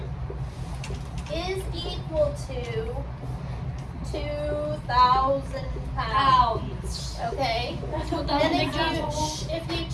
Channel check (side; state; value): both; identical; correlation 1.00